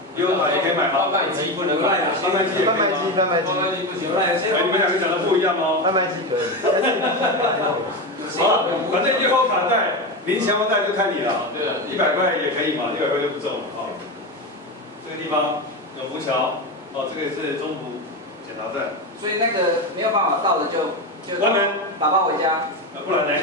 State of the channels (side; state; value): both; normal; correlation 0.17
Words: 悠游卡也可以买吗？贩卖机不能买贩卖机也可以吗？贩卖机贩卖机不行。哎，你们两个讲的不一样哦。贩卖机可以，但是好了，反正悠游卡带、零钱包带就看你了。对啊100块也可以嘛，100块就不中了啊。这个地方永福桥，哦，这个是中福检查站。所以那个没有办法到的就关门，打包回家。不然呢？